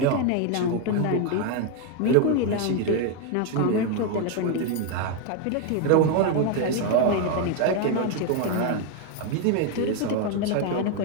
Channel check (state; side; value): different; both; correlation 0.01